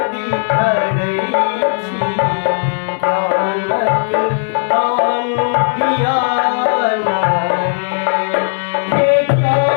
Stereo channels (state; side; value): silent; right; digital silence